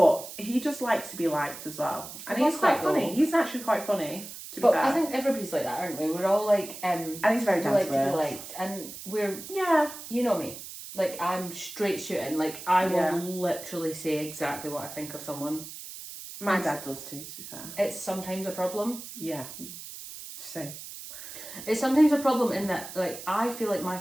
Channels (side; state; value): right; noise; hiss, 12 dB below the sound